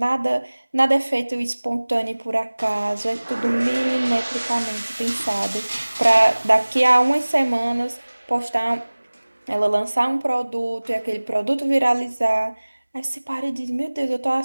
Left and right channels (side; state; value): both; inverted; correlation -1.00